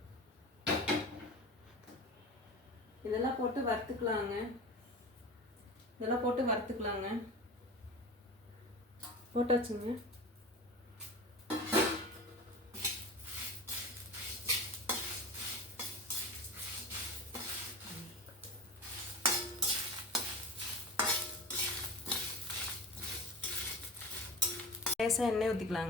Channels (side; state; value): both; normal; correlation 0.32